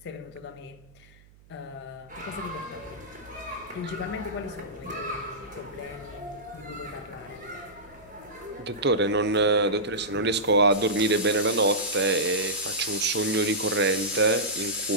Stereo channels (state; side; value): noise; right; hum, 27 dB below the sound